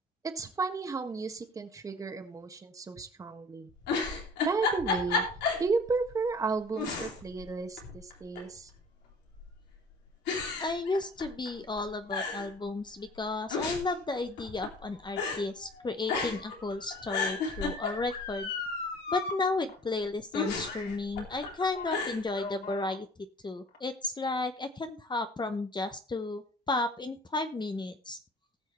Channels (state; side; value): normal; both; correlation 0.48